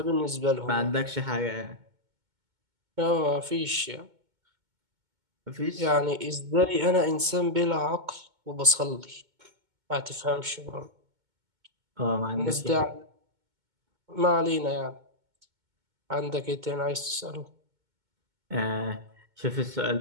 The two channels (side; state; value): left; late; 2.2 ms